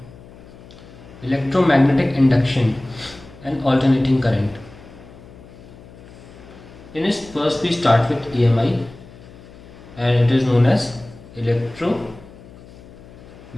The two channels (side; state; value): left; noise; hum, 20 dB below the sound